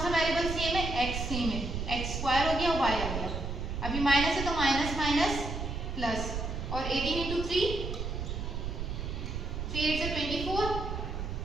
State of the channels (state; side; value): noise; right; rumble, 4 dB below the sound